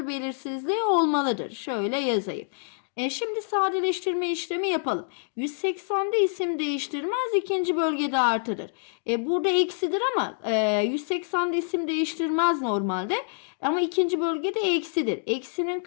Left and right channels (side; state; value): right; silent; digital silence